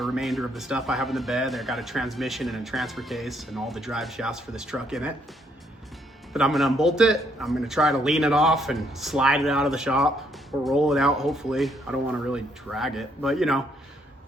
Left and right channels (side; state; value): both; normal; correlation 0.71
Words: remainder of the stuff I have in the bed. I got a transmission and a transfer case and all the drive shafts for this truck in it. But I'm gonna unbolt it. I'm gonna try to lean it off and slide it out of the shop or roll it out, hopefully. I don't wanna really drag it, but you know,